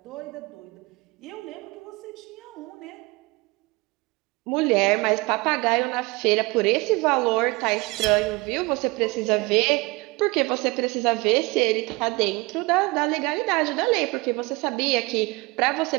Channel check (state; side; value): quieter; left; 24.7 dB